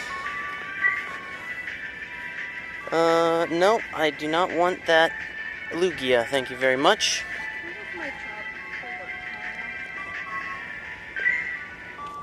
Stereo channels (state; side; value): identical; both; correlation 1.00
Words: No, I do not want that Lugia. Thank you very much.